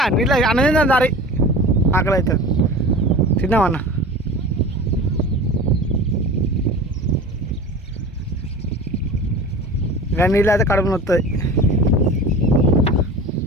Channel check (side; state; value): both; normal; correlation 0.36